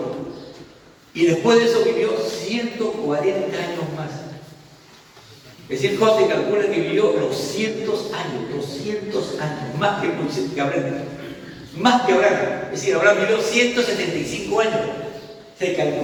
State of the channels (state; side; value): identical; both; correlation 1.00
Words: Y después de eso vivió 140 años más. Es decir, Job se calcula que vivió 200 años, más que Abraham. Más que Abraham. Es decir, Abraham vivió 175 años. Se